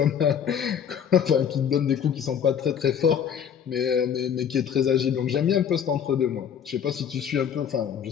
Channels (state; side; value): quieter; right; 8.2 dB